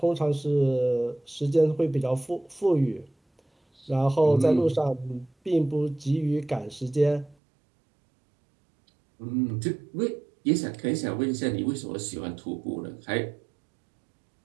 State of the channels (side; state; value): left; drops out; at 7.4 s